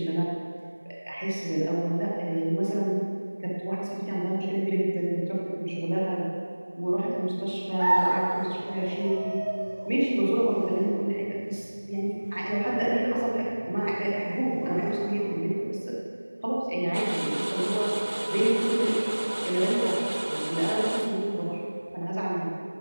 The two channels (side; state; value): both; inverted; correlation -1.00